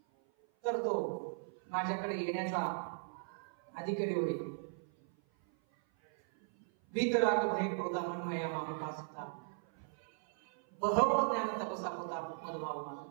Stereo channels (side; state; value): left; silent; 53 dB below the other